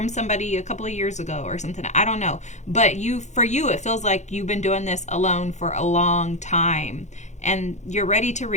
somebody a couple of years ago or something. I don't know. But for you, it feels like you've been doing this alone for a long time. And you're ready to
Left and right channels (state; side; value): late; right; 0.34 ms